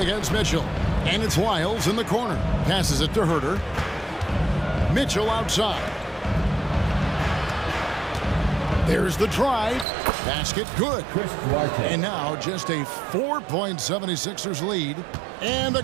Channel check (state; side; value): drops out; left; at 9.9 s